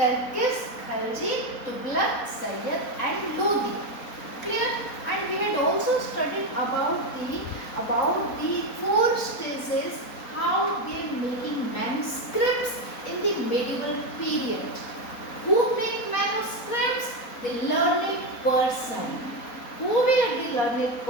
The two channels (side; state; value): right; late; 4.1 ms